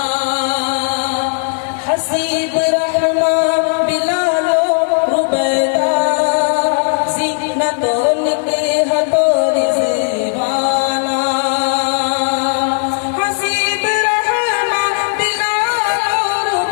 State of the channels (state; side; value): silent; right; digital silence